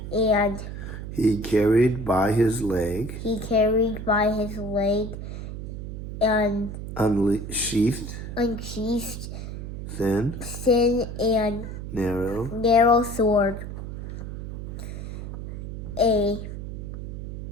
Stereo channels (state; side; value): noise; right; hum, 7 dB below the sound